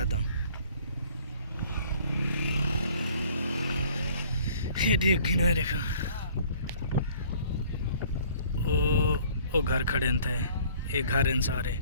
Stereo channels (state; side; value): inverted; both; correlation -0.55